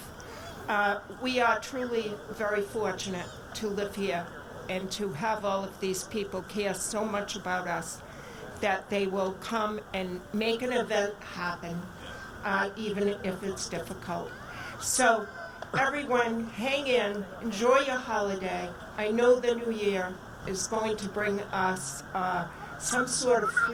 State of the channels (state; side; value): identical; both; correlation 1.00